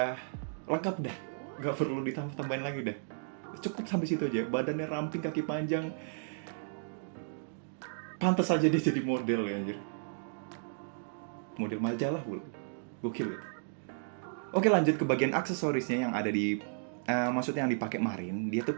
lengkap dah, nggak perlu ditambah-tambahin lagi dah. Cukup sampai situ aja. Badannya ramping, kaki panjang. Pantas aja dia jadi model ya anjir. Model majalah pula. Gokil gitu. Oke, lanjut ke bagian aksesorisnya yang ada di maksudnya yang dipakai Marin. Dia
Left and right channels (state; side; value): silent; left; digital silence